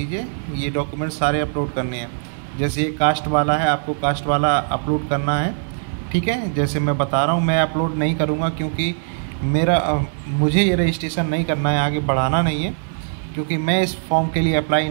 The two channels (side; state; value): left; silent; digital silence